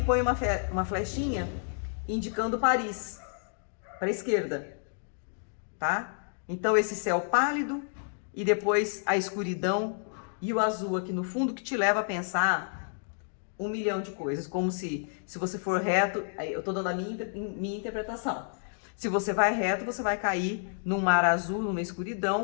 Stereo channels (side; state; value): right; silent; digital silence